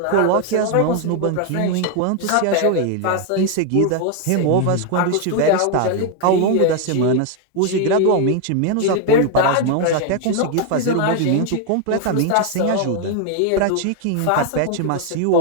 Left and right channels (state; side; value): different; both; correlation 0.01